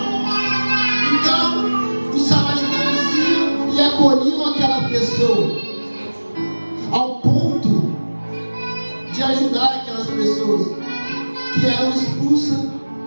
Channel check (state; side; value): inverted; both; correlation -1.00